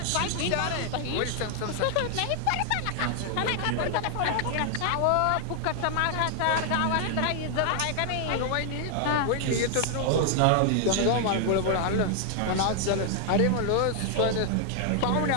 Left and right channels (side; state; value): both; different; correlation 0.00